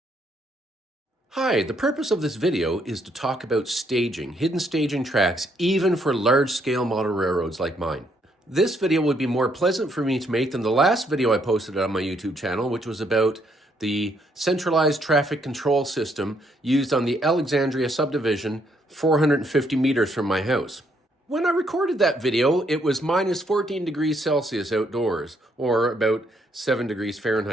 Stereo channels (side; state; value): both; normal; correlation 0.72